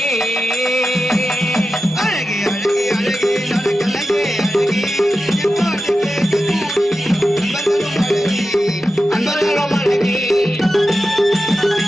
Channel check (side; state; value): both; normal; correlation 0.92